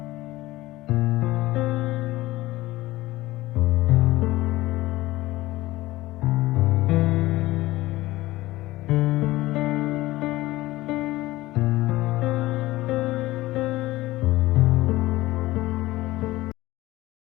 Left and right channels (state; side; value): quieter; right; 18.0 dB